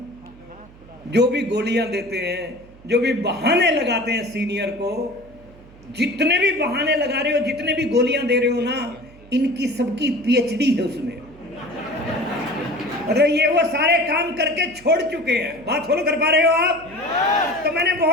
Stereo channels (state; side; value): noise; right; hum, 23 dB below the sound